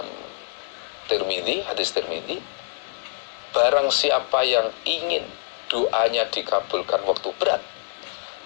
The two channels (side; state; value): right; silent; digital silence